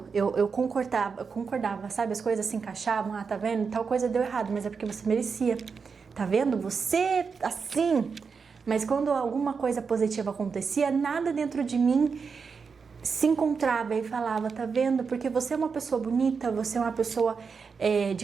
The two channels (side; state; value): left; quieter; 5.5 dB